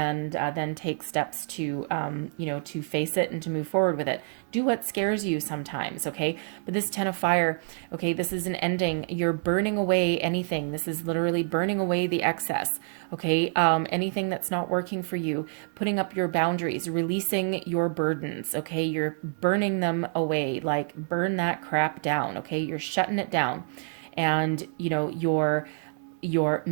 then take steps to, to face it and to move forward with it. Do what scares you sometimes, okay? But this 10 of fire, okay, this is an ending. You're burning away anything. This is literally burning away the excess, okay? Anything that's not working for you, putting up your boundaries, releasing your burdens, okay? You're burning them away, like burn that crap down, okay? You're shutting it down. And, you're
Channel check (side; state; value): left; silent; 59 dB below the other